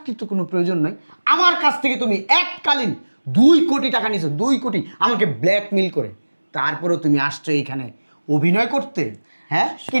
তো কোনো প্রয়োজন নাই। আমার কাছ থেকে তুমি এককালীন 2 কোটি টাকা নিছো, 2 কোটি, আমাকে ব্ল্যাকমেইল করে। তারপরেও তুমি আসছো এইখানে অভিনয় করতে। হ্যাঁ, কি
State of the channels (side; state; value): both; inverted; correlation -1.00